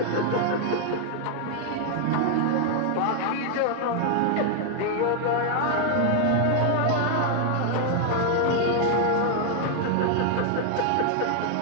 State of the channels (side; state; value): both; different; correlation 0.00